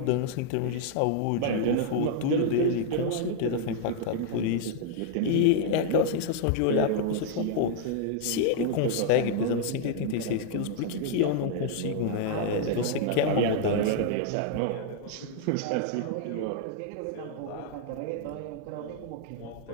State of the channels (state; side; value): different; both; correlation -0.01